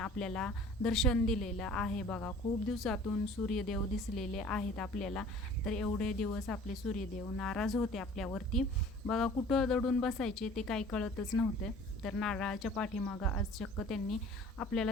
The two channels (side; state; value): both; normal; correlation 0.48